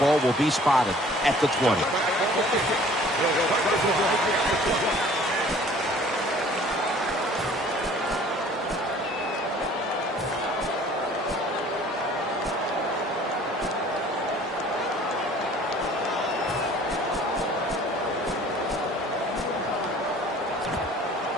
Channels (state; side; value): normal; both; correlation 0.51